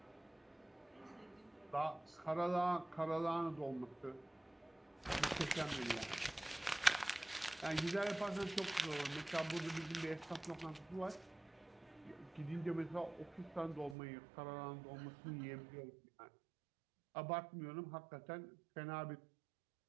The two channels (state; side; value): drops out; left; at 14.0 s